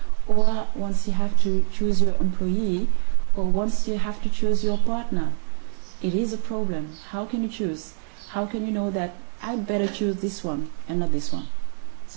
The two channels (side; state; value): left; silent; 59 dB below the other